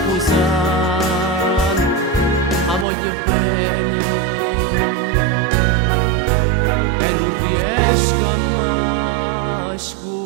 La voglio bene e non riesco a mai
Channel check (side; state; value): left; drops out; at 2.9 s